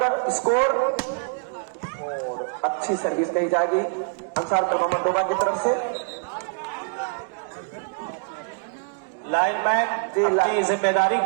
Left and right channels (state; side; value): quieter; left; 36.9 dB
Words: स्कोर, और अच्छी सर्विस कही जाएगी अंसार क्लब अहमदोबा की तरफ से। लाइनमैन अपनी जिम्मेदारी